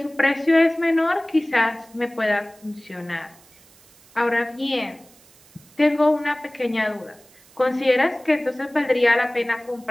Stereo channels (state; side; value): noise; right; hiss, 27 dB below the sound